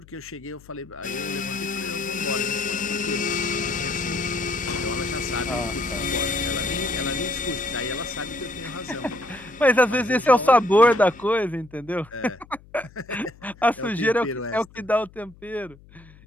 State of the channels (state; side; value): noise; left; hum, 24 dB below the sound